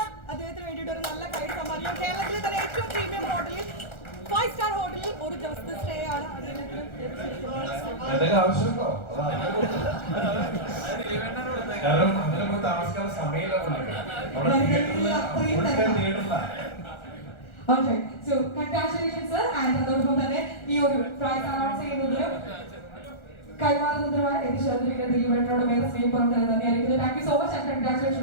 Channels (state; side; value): late; right; 1.4 ms